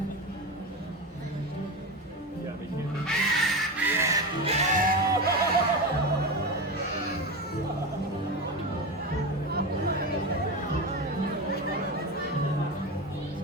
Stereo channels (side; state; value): both; normal; correlation 0.21